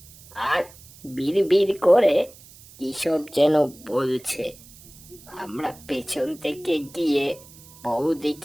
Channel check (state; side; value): noise; right; hiss, 22 dB below the sound